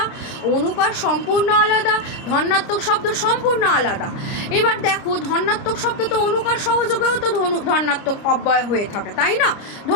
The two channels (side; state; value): right; late; 29 ms